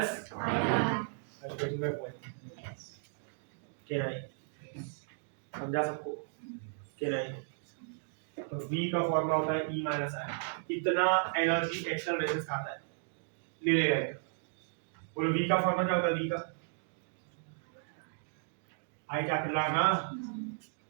are you getting my point? क्या नहीं समझा सबको? क्या नहीं? तो V का फॉर्मूला होता है E माइनस I. इतना एनर्जी एक्सटर्नल रेजिस्टेंस खाता है, ले लेगा इतना. बोलो V का फॉर्मूला क्या होता है? V का I कैपिटल R ना.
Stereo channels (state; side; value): silent; left; digital silence